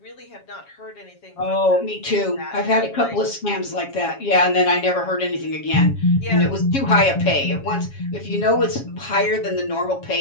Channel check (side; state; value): right; late; 7.3 ms